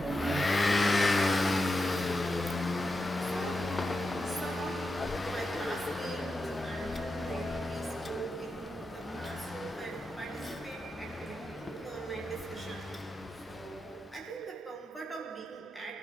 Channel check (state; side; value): normal; both; correlation 0.88